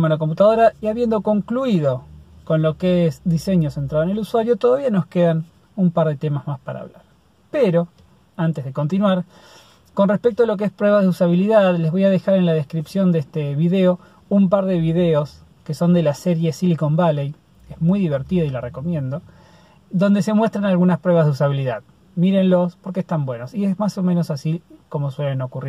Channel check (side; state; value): both; identical; correlation 1.00